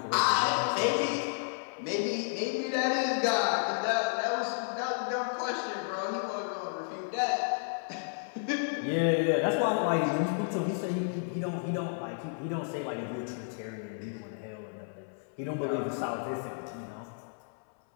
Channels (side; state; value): right; silent; 57 dB below the other